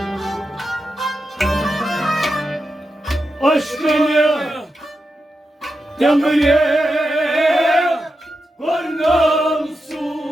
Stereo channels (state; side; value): normal; both; correlation 0.88